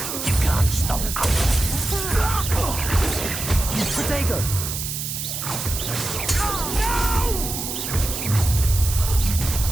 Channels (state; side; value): noise; right; hiss, 5 dB below the sound